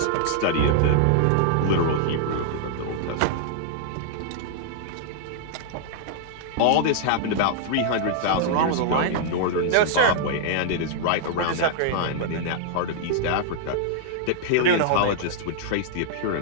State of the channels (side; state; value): both; different; correlation -0.01